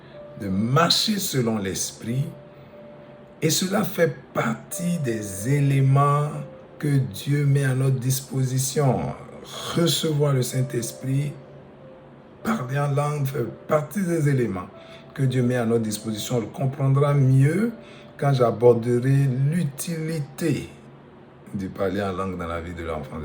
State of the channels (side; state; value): both; identical; correlation 1.00